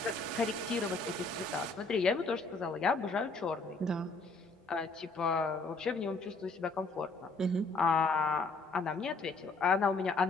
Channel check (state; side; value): quieter; right; 3.6 dB